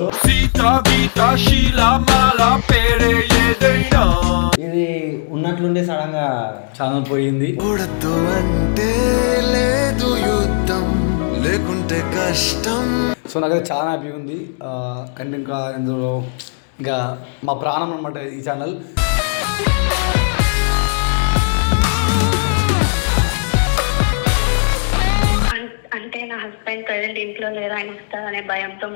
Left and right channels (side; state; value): right; silent; digital silence